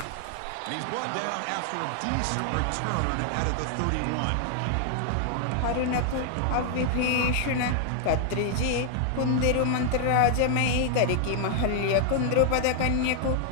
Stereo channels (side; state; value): both; different; correlation 0.00